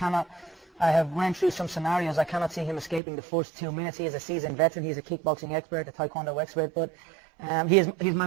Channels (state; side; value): drops out; left; at 3.0 s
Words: I have ran through some scenarios. I cannot see him escaping the first 2 minutes. He is a seasoned veteran. He's a kickboxing expert, a taekwondo expert, but he's my